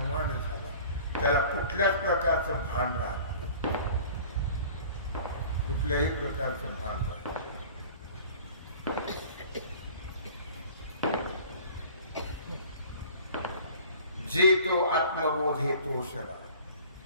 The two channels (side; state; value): both; inverted; correlation -0.46